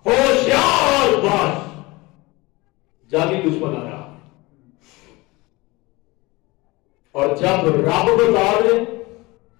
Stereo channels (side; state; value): right; quieter; 22.7 dB